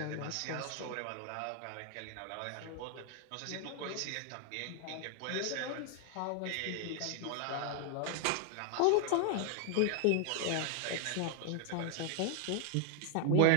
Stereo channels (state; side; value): different; both; correlation 0.00